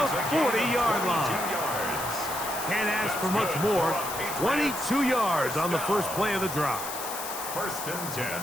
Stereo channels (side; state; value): left; noise; hiss, 7 dB below the sound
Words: 40-yard line. Can't ask for much more. 22 yards on the first play of the drive. 1st and 10